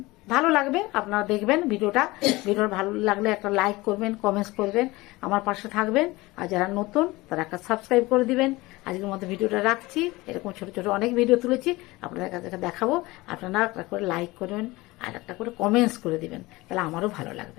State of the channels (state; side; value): quieter; right; 21.0 dB